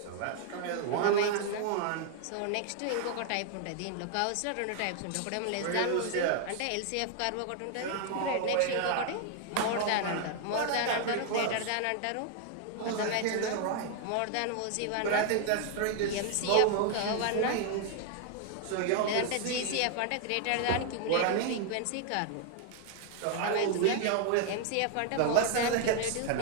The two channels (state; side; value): different; both; correlation 0.00